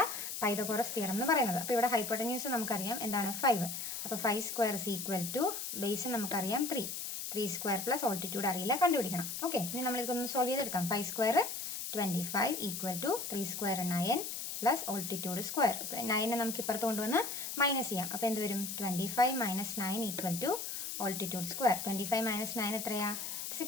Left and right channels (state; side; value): noise; left; hiss, 5 dB below the sound